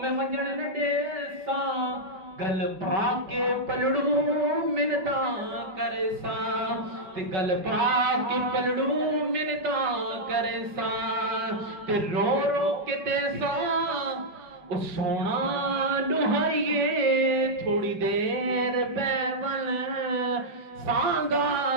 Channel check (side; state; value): left; late; 5.2 ms